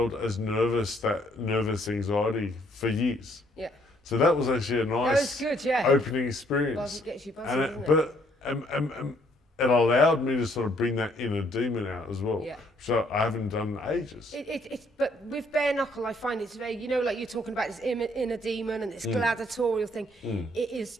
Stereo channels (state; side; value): normal; both; correlation 0.67